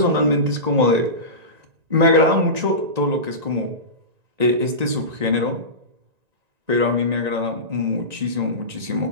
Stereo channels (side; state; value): left; late; 1.9 ms